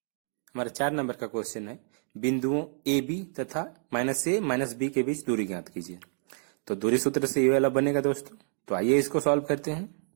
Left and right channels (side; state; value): left; silent; 59 dB below the other